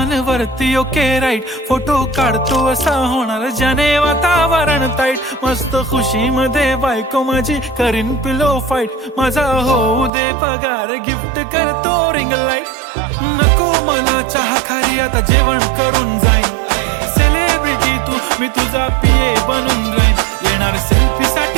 वरती ओके राईट. फोटो काढतो असा होणार ज्याने वातावरण ताईट. मस्त खुशी मध्ये बायको माझी करीन पिलो फाईट. माझा होऊ दे पगार गिफ्ट करतो रिंग लाईट. नको मला चहा खारी आता जेवण करून जाईन. सेलिब्रिटी तू मी तुझा पिये बनून राहीन. येणार सेल्फी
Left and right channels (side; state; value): left; drops out; at 10.1 s